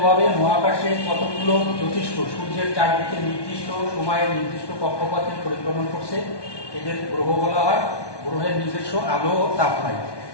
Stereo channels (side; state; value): right; late; 1.2 ms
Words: মহাকাশে কতগুলো জ্যোতিষ্ক সূর্যের চারদিকে নির্দিষ্ট সময়ে নির্দিষ্ট কক্ষপথে পরিক্রমণ করছে, এদের গ্রহ বলা হয়। গ্রহের নিজস্ব আলো ও তাপ নাই।